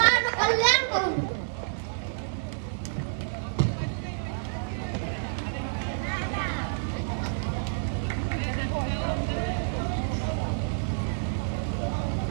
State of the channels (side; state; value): left; silent; 59 dB below the other